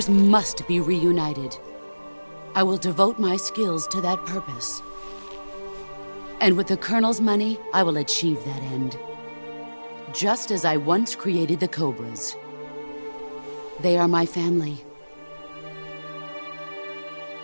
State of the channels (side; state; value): both; inverted; correlation -1.00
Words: must be reunited. I will devote my skills to that purpose. And with the Colonel's money, I will achieve that end. Just as I once created the Cobras. They are my family.